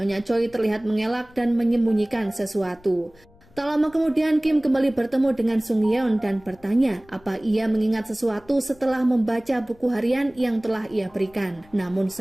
Choi terlihat mengelak dan menyembunyikan sesuatu. Tak lama kemudian Kim kembali bertemu dengan Sungyeon dan bertanya apa ia mengingat sesuatu setelah membaca buku harian yang telah ia berikan. Namun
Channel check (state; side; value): noise; left; rumble, 28 dB below the sound